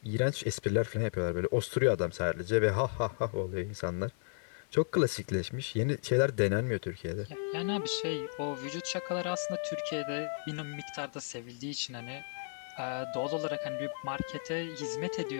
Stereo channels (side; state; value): right; silent; digital silence